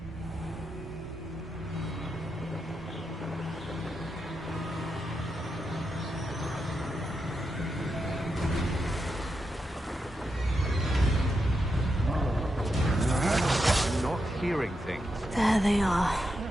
Hearing things. There they are.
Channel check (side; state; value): both; normal; correlation 0.85